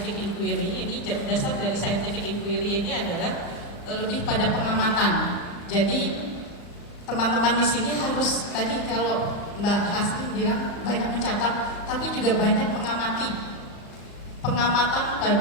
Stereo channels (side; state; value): right; late; 34 ms